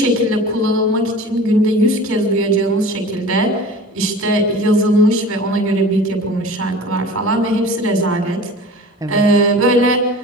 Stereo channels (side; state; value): both; normal; correlation 0.39